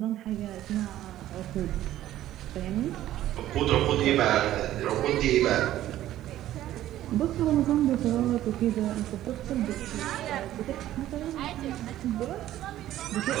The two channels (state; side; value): quieter; left; 13.4 dB